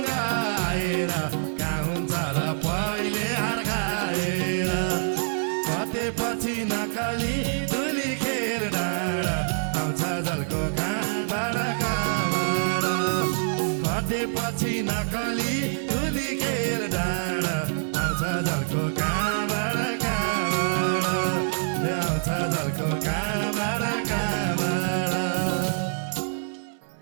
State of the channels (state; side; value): silent; left; digital silence